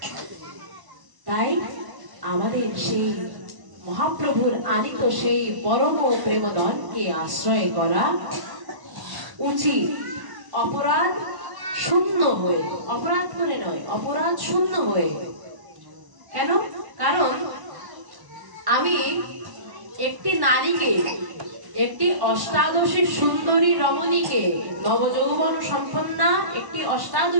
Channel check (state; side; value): late; left; 1.0 ms